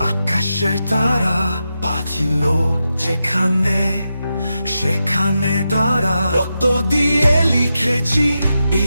আকাশের তারা বাঁচিল যেখানে সেখানে তারা রক্ত দিয়ে লিখেছি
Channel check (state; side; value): inverted; both; correlation -0.88